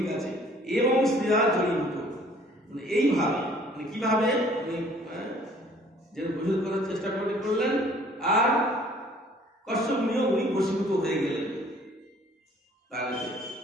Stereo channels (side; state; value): both; normal; correlation 0.56